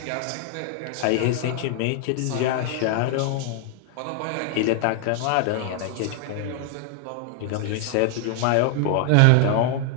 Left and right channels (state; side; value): different; both; correlation 0.00